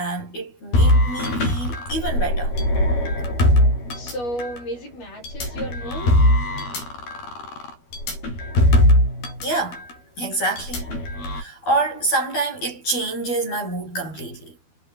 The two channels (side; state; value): right; late; 12 ms